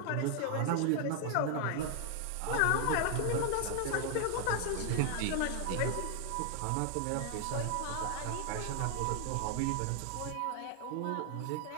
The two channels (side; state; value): both; different; correlation 0.00